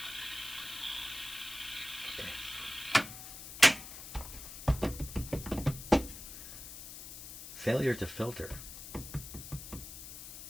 Failure to filter. I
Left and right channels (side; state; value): left; noise; hiss, 11 dB below the sound